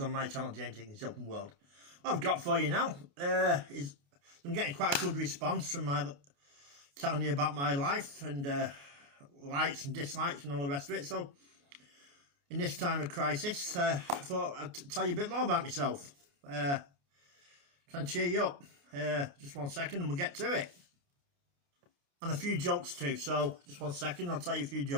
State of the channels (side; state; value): left; late; 28 ms